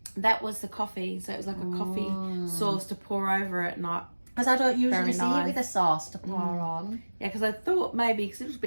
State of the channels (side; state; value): both; inverted; correlation -1.00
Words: That was the coffee. So it was like a coffee sauce to pour over it, not. Because I don't usually see nice. it with a sauce to pour on. Yeah, because I thought maybe, because it was a